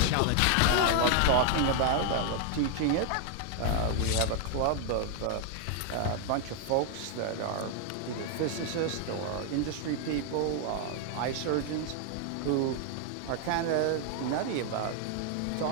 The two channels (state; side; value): different; both; correlation 0.00